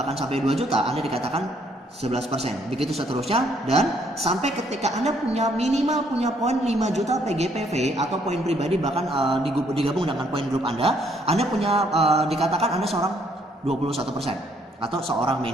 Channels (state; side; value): normal; both; correlation 0.68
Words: sampai 2 juta, Anda dikatakan 11%. Begitu seterusnya, dan sampai ketika Anda minimal punya poin 5 juta PGPV atau poin pribadi bahkan digabung dengan poin grup Anda punya dikatakan Anda seorang 21% atau seorang